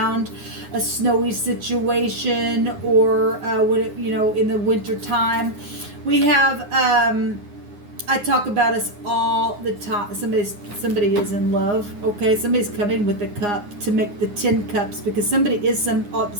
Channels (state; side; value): late; left; 9.7 ms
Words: a snowy situation, or when it, in the winter time. We have... I talk about us all the time. Somebody is in love. Okay, somebody's coming with a cup to make the 10 cups, because somebody is